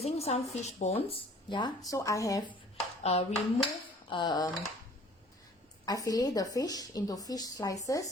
some fish bones. Yeah, so I have removed. I fillet the fish into fish slices,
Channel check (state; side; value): normal; both; correlation 0.52